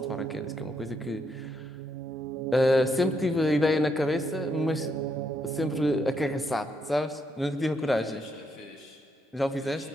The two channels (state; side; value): normal; both; correlation 0.77